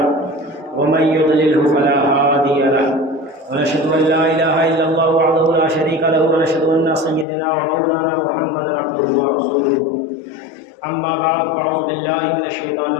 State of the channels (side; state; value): right; drops out; at 7.2 s